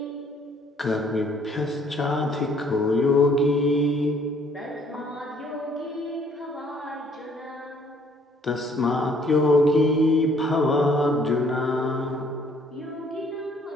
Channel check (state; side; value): normal; both; correlation 0.62